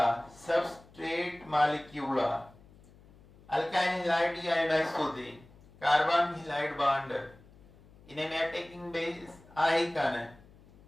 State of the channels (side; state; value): left; noise; hum, 25 dB below the sound